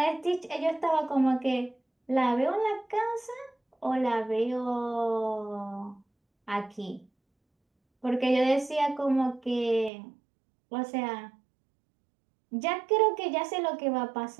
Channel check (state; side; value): drops out; left; at 9.9 s